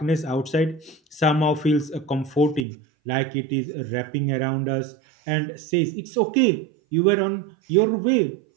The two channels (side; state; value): left; drops out; at 2.7 s